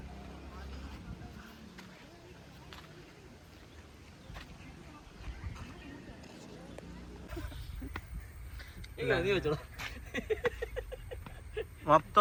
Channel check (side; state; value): both; identical; correlation 1.00